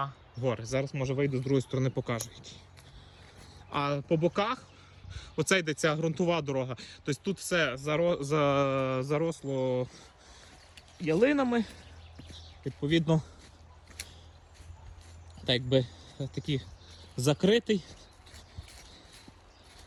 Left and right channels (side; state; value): both; identical; correlation 1.00